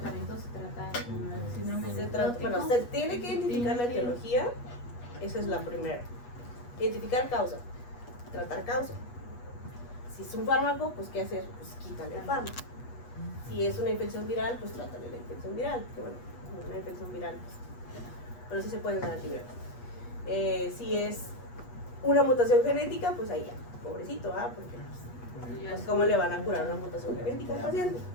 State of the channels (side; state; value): right; late; 8.3 ms